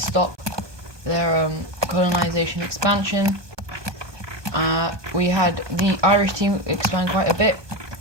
stop their colonization expansion. We had the Irish team expand quite a bit,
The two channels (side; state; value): left; late; 1.2 ms